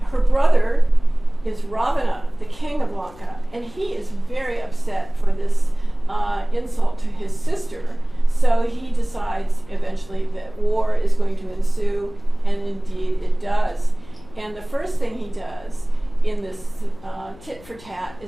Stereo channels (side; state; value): left; noise; hum, 22 dB below the sound